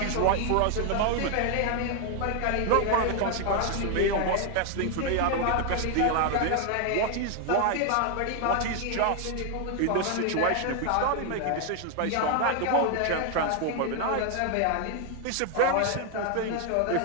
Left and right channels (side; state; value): both; different; correlation 0.00